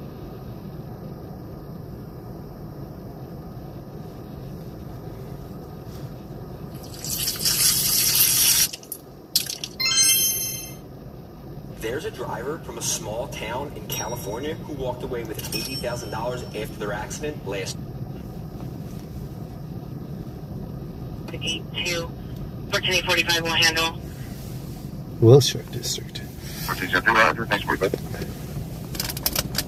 There's a driver from a small town in California who walked away with $80,000 after their accident last. 82, 1445 will handle. Wilshire District. 1470, Roger. Thanks for that.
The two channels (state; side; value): identical; both; correlation 1.00